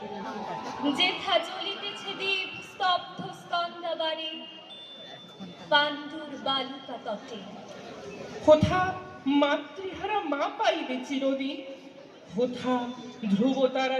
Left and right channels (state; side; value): identical; both; correlation 1.00